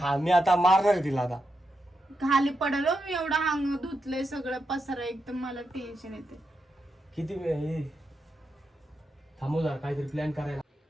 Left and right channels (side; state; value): both; normal; correlation 0.85